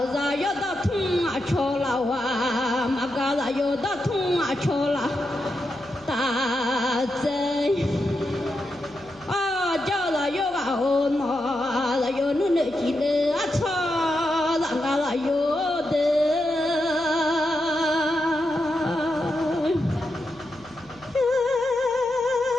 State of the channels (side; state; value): left; noise; hum, 26 dB below the sound